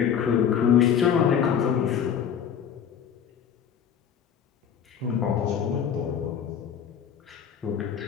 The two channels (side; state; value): right; quieter; 8.2 dB